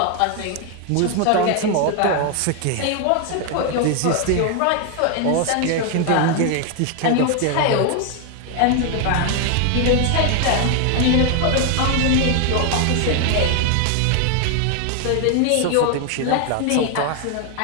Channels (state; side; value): different; both; correlation 0.01